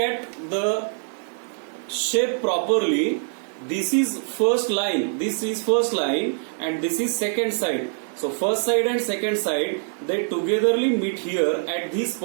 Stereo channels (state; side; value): silent; left; 63 dB below the other